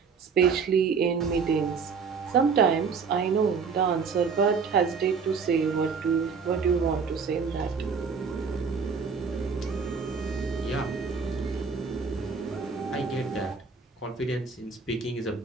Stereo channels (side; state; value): left; quieter; 5.5 dB